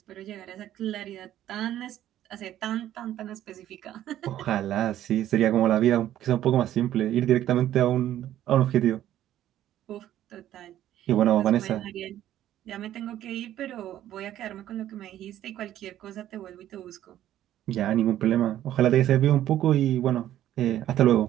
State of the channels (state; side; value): quieter; left; 12.4 dB